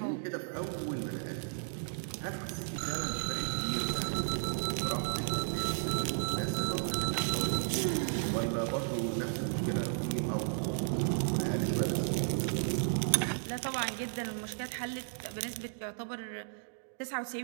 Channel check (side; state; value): left; silent; digital silence